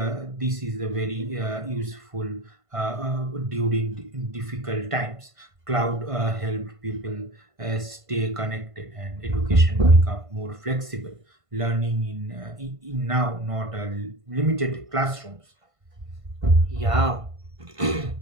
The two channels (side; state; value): left; late; 1.5 ms